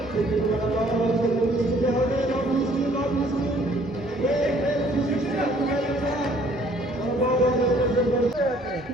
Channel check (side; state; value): both; normal; correlation 0.59